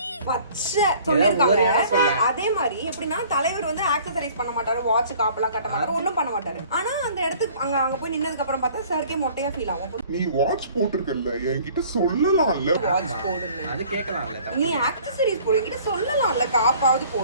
பச்சை சொல்லிருக்காங்க. அதே மாதிரி எப்படின்னா தலைவர் வந்து ஆக்சசரைஸ் பண்ண மாட்டாரு, வாட்ச் காப்பெல்லாம் கட்ட மாட்டாரு, ஒண்ணும் பண்ண மாட்டாரு. ஆனா அந்த இடத்துக்கு அங்க போய் நின்னதுக்கு அப்புறம் பார்த்தா சார்க்கே மொட்டையா ஃபீல் ஆகும். நீ வாட்ச் போட்டுருக்கல்ல, என்கிட்ட சொல்லலாம்ல. வாட்ச் போடு, அது கேட்கலாம்ல. நீ ஆக்சசரிஸ் போடு, என்கிட்ட சொல்லலாம்ல, காப்பாவது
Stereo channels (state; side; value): inverted; both; correlation -0.52